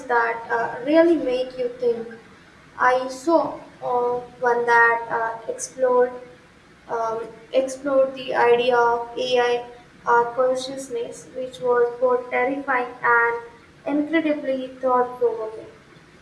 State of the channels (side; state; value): both; identical; correlation 1.00